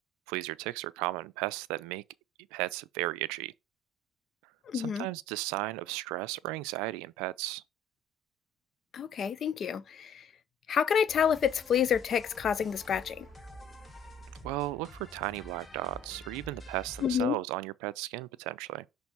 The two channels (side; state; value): both; normal; correlation 0.49